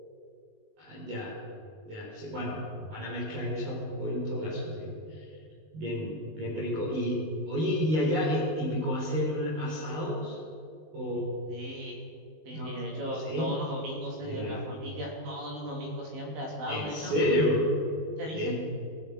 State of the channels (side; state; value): left; late; 19 ms